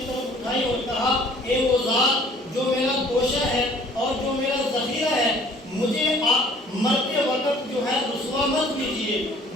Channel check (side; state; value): both; normal; correlation 0.54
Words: طرف اٹھائی اور کہا اے وہ ذات جو میرا گوشہ ہے اور جو میرا ذخیرہ ہے، مجھے مرتے وقت جو ہے رسوا مت کیجیے،